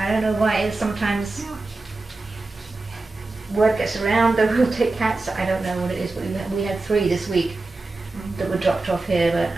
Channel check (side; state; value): left; quieter; 3.3 dB